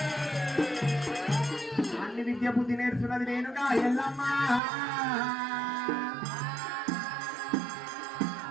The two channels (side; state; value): left; drops out; at 4.6 s